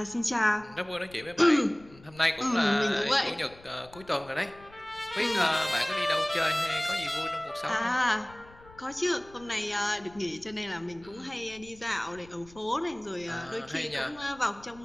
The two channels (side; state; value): left; noise; rumble, 23 dB below the sound